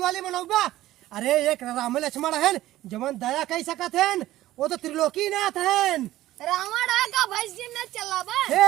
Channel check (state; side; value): quieter; left; 15.2 dB